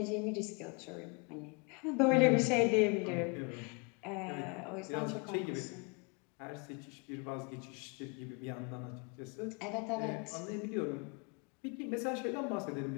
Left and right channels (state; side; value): quieter; right; 32.2 dB